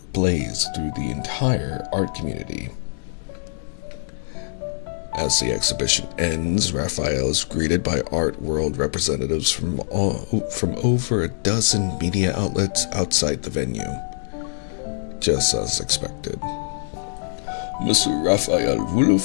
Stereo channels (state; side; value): silent; right; digital silence